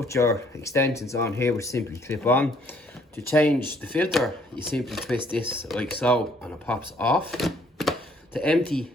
your extensions on here, which simply clip on. To change the filter, you simply twist this like so, and it pops off. To empty,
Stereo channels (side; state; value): both; normal; correlation 0.63